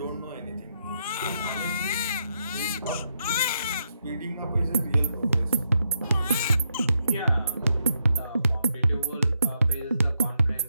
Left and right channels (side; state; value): both; inverted; correlation -0.80